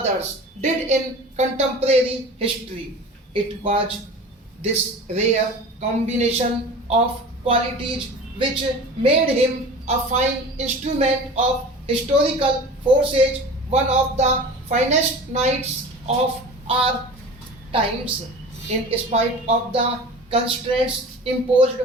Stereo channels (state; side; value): normal; both; correlation 0.37